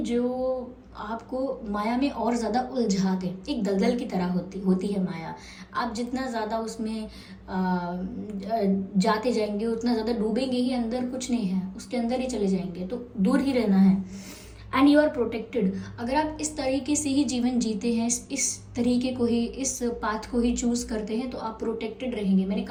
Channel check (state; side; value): identical; both; correlation 1.00